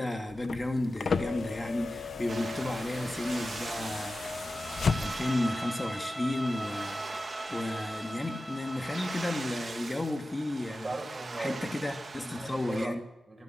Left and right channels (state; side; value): normal; both; correlation 0.94